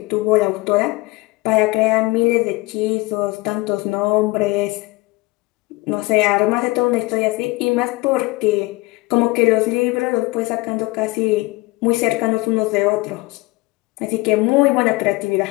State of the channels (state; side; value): quieter; right; 22.9 dB